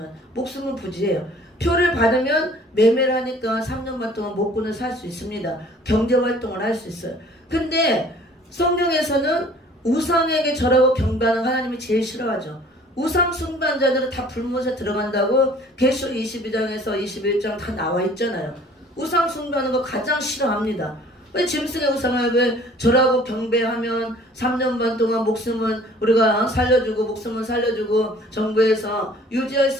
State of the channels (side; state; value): both; normal; correlation 0.52